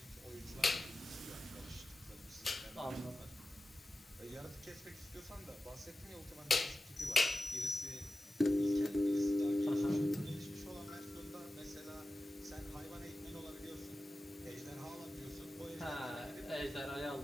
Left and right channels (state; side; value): normal; both; correlation 0.94